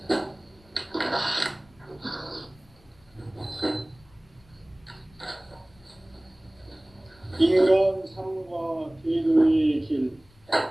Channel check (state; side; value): noise; left; rumble, 29 dB below the sound